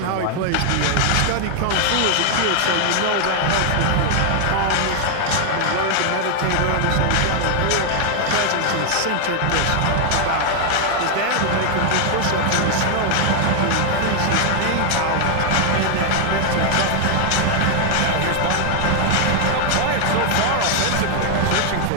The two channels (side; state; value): both; different; correlation 0.00